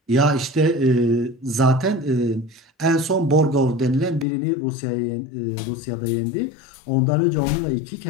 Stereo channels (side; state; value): right; drops out; at 4.2 s